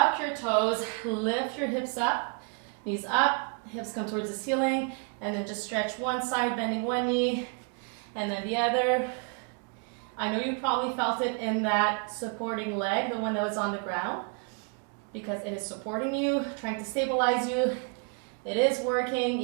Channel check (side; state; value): left; quieter; 35.8 dB